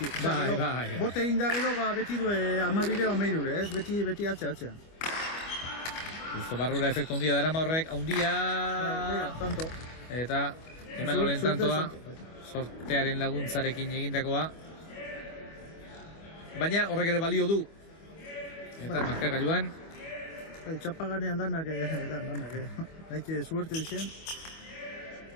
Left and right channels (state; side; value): late; right; 25 ms